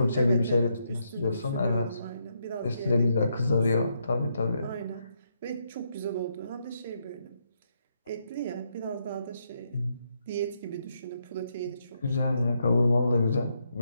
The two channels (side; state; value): both; inverted; correlation -0.78